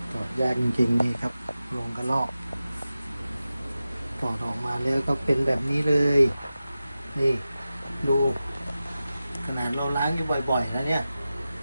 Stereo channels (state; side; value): inverted; both; correlation -0.94